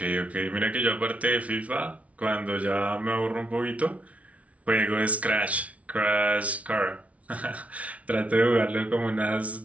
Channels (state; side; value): late; left; 0.066 ms